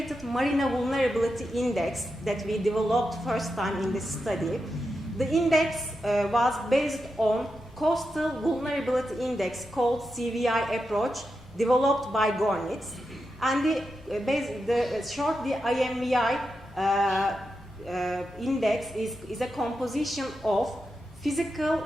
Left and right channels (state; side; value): normal; both; correlation 0.87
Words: marina vulnerability index that we developed first time in this study. The index was based on Coastal Vulnerability Index called CVI approach developed by Gornitz. And the IMVI index is a composition of physical